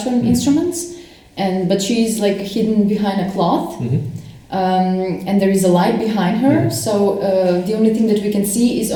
instruments, but she's like hidden behind a cloth. And there is a light behind her. So the only thing that we can see is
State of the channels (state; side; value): identical; both; correlation 1.00